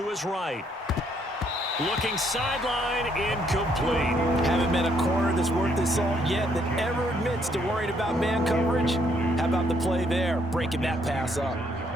his right. Looking sideline, incomplete. Haven't met a corner that's worth his salt yet that ever admits to worrying about man coverage. How about the play there, breaking that pass up?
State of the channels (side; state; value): both; normal; correlation 0.70